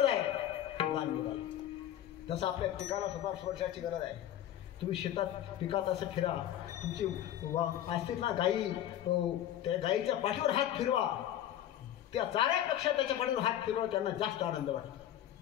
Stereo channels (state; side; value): quieter; right; 11.6 dB